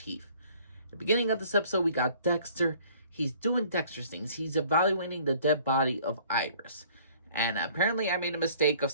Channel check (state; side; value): inverted; both; correlation -0.55